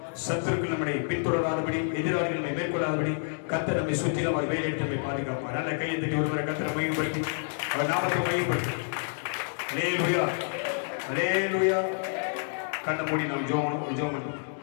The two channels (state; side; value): silent; right; 59 dB below the other